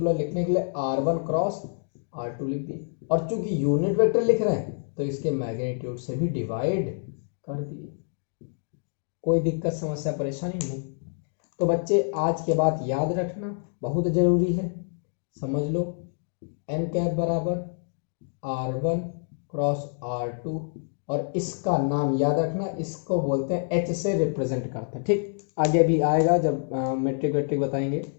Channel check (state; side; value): silent; right; digital silence